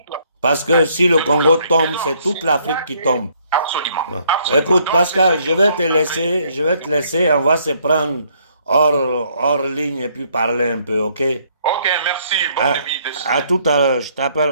Parce que si le Congo tombe, c'est toute l'Afrique qui tombe. Absolument. Écoute, Pascal, je vais te laisser, on va se prendre hors ligne et puis parler un peu, ok? Ok, merci. Bonne nuit. À tout à l'heure, je t'appelle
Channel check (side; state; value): both; inverted; correlation -0.67